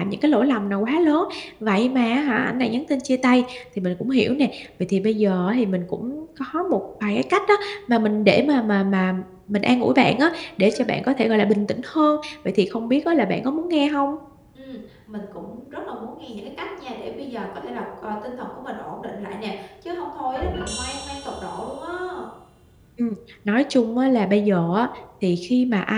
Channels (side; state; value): both; identical; correlation 1.00